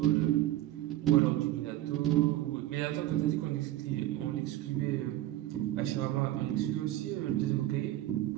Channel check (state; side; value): quieter; left; 14.5 dB